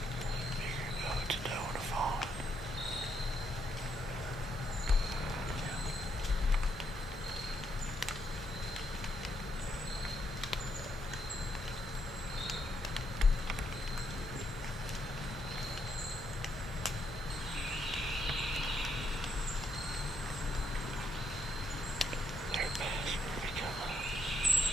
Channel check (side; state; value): both; normal; correlation 0.76